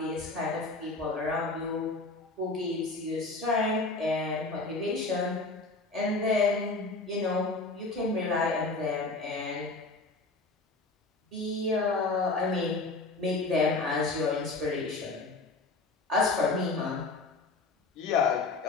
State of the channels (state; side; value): quieter; right; 3.5 dB